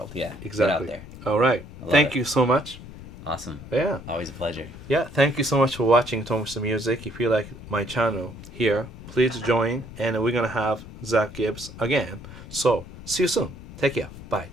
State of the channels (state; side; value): noise; left; rumble, 14 dB below the sound